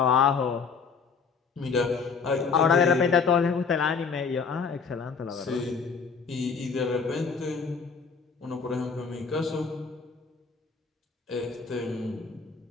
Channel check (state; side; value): quieter; right; 5.4 dB